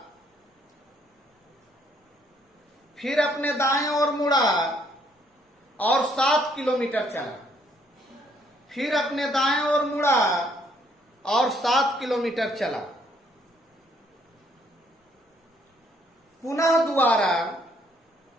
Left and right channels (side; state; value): both; normal; correlation 0.68